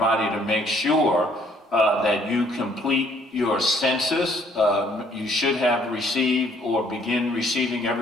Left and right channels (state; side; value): normal; both; correlation 0.63